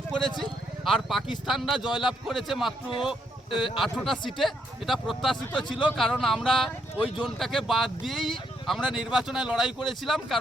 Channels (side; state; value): both; normal; correlation 0.75